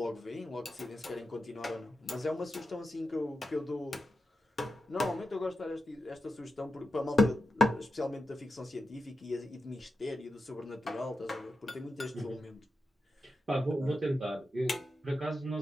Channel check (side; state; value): both; normal; correlation 0.90